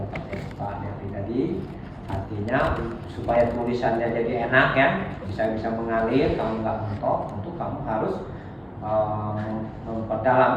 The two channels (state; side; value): identical; both; correlation 1.00